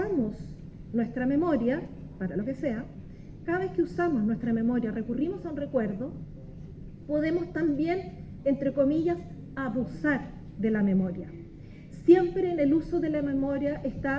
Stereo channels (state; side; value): identical; both; correlation 1.00